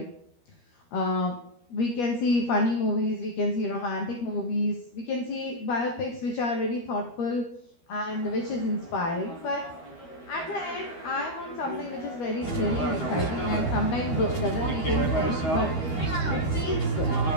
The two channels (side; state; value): right; late; 13 ms